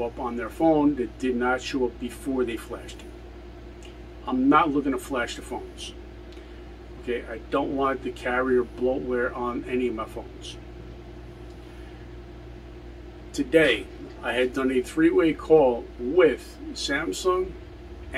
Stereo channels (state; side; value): identical; both; correlation 1.00